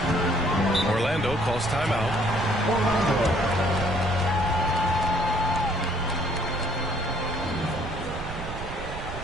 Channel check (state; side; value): noise; right; rumble, 9 dB below the sound